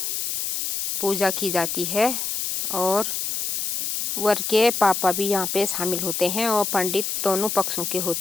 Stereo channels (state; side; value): noise; left; hiss, 1 dB below the sound